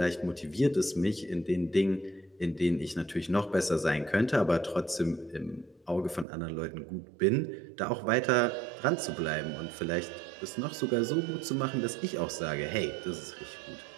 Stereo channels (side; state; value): left; drops out; at 6.2 s